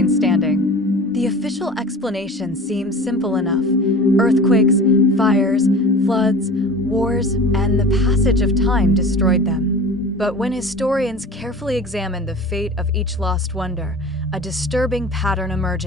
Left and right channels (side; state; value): both; normal; correlation 0.39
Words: standing. The official explanation seems simple enough. Earthquakes, fires, floods, wars, and the passage of time destroyed them. But when historians carefully examine the fate of each lost wonder, a disturbing pattern